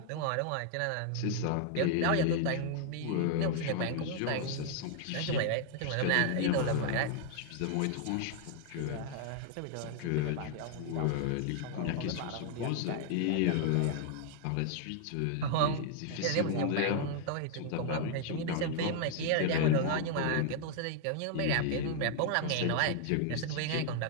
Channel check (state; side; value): different; both; correlation 0.00